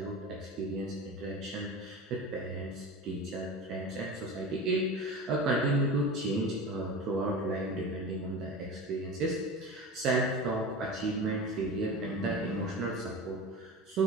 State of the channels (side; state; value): both; normal; correlation 0.30